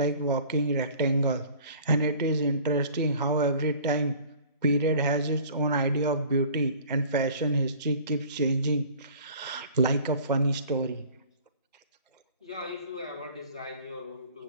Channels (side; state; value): both; inverted; correlation -0.48